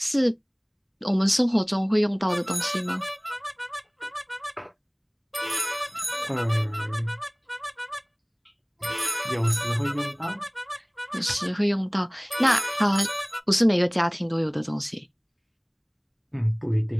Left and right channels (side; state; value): both; identical; correlation 1.00